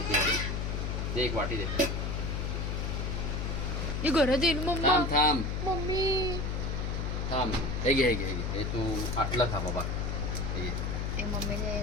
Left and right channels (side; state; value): left; noise; hum, 1 dB below the sound